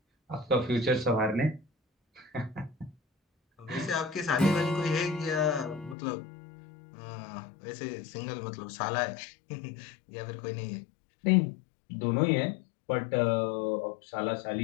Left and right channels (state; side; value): drops out; right; at 6.0 s